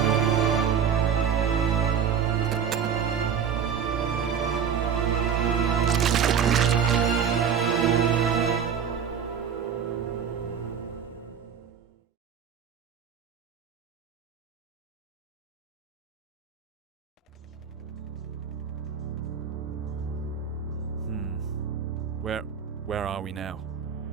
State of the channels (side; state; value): left; quieter; 7.4 dB